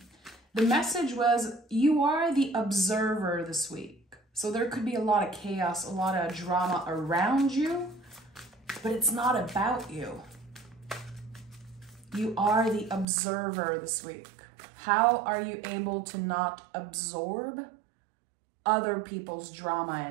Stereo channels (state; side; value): drops out; left; at 13.1 s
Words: The message was, you are the observer this week. So there could be a lot of chaos, a lot of drama around you, but it's not about you. You are the observer this week. How are you able to not absorb other people's drama